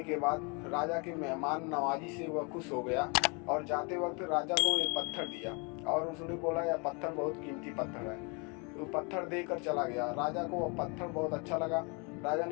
के बाद राजा के मेहमान नवाजी से वह खुश हो गया, और जाते वक्त राजा को एक पत्थर दिया, और उसने बोला यह पत्थर बहुत कीमती पत्थर है। तो पत्थर देकर चला गया। राजा को वह पत्थर बहुत अच्छा लगा। राजा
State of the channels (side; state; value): right; quieter; 32.3 dB